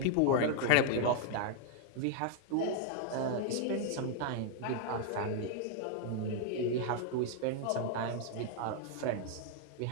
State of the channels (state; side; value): different; both; correlation 0.00